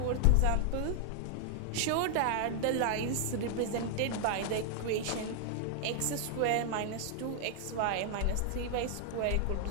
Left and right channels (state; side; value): different; both; correlation 0.00